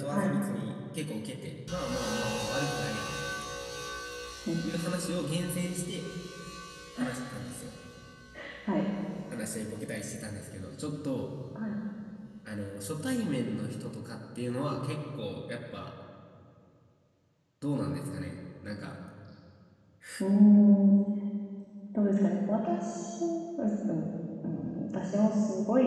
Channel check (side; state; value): both; identical; correlation 1.00